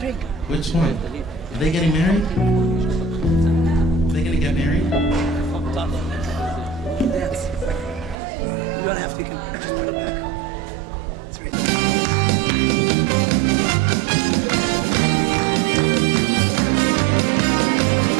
Which one? Are they getting married? Are they gonna get married? Dance. You don't have to, you can just put it back. It's right there.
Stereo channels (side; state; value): left; drops out; at 8.2 s